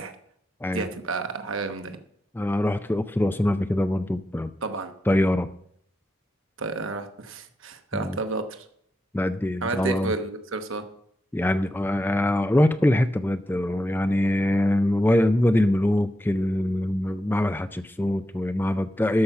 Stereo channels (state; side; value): normal; both; correlation 0.87